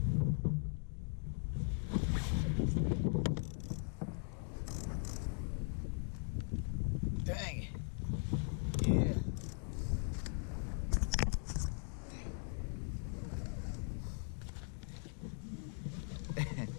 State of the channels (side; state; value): right; silent; 51 dB below the other